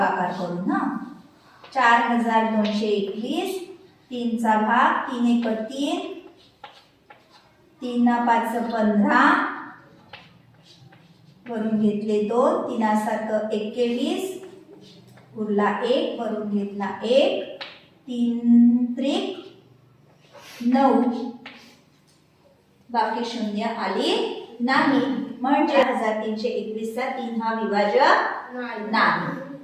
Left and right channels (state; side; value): identical; both; correlation 1.00